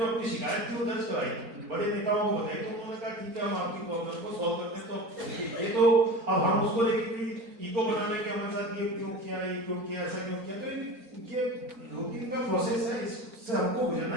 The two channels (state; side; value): late; left; 4.3 ms